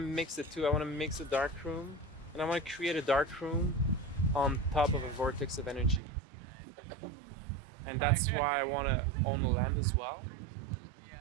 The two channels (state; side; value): drops out; left; at 6.0 s